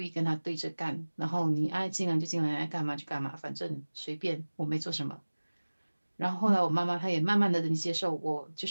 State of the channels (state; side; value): inverted; both; correlation -1.00